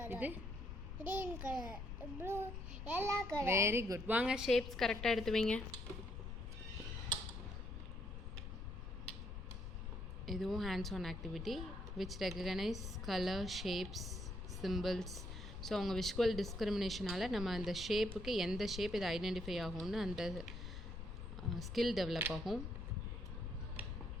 இது green colour. Blue yellow colour. Very good. வாங்க ஷேப்ஸ் கரெக்டாக எடுத்து வைங்க. இதுவும் hands on activity which recognise colour shapes symbols. So அவங்க விஷுவல் டிஸ்கிரிமினேஷனால் நம்ம அந்த ஷேப்புக்கு எந்த ஷேப் இது ஐடென்டிஃபை ஆகும்னு அந்த ஸ்கில் டெவலப் ஆகும்.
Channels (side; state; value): left; noise; rumble, 7 dB below the sound